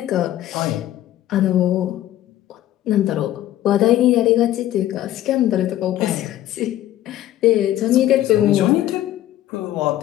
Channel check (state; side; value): quieter; right; 13.4 dB